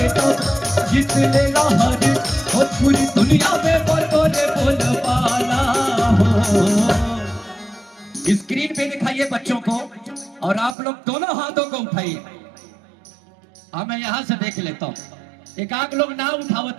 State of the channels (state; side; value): drops out; left; at 10.8 s